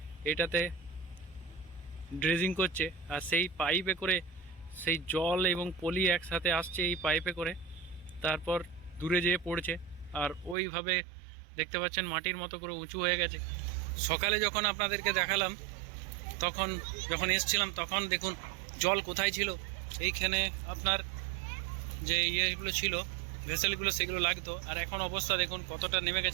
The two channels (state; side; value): drops out; left; at 10.6 s